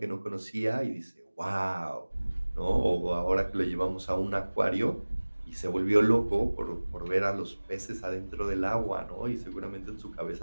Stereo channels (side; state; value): both; inverted; correlation -1.00